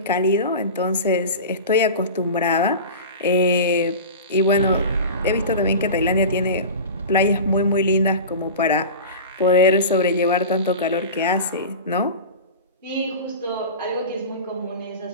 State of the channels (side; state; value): both; inverted; correlation -0.31